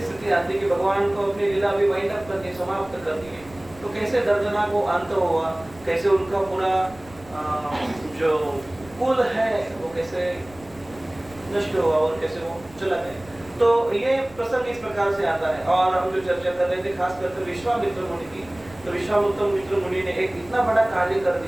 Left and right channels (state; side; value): noise; right; rumble, 22 dB below the sound